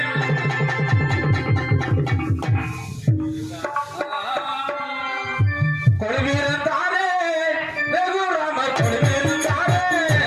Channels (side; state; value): both; identical; correlation 1.00